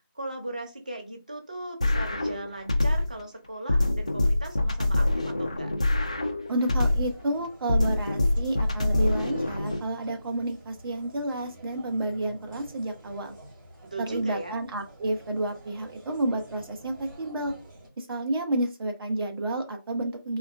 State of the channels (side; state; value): both; inverted; correlation -0.85